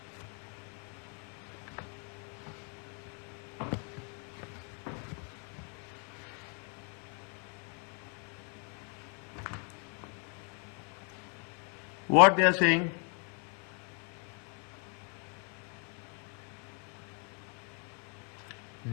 What they are saying?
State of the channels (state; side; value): quieter; right; 39.7 dB